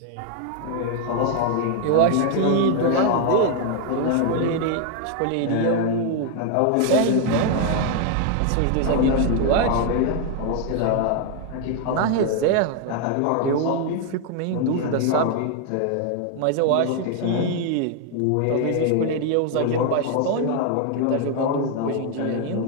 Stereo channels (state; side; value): different; both; correlation 0.00